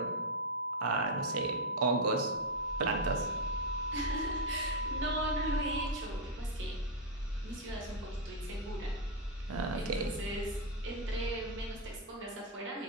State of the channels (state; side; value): normal; both; correlation 0.00